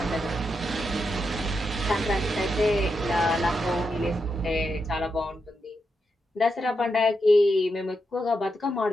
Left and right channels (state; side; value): normal; both; correlation 0.85